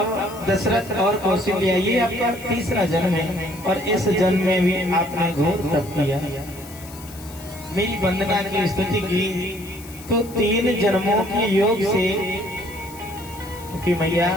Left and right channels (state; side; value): noise; left; hiss, 18 dB below the sound